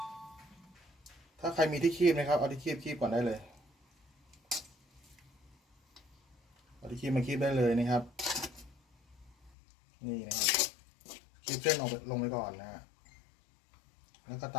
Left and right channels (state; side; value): drops out; right; at 9.5 s